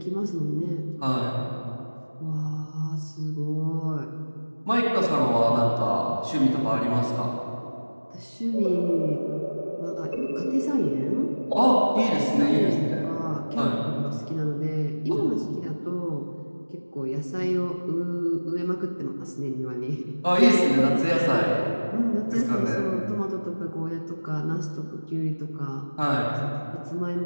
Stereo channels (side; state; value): both; inverted; correlation -1.00